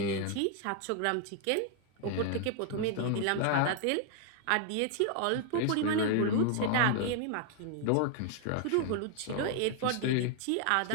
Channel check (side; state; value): both; different; correlation 0.00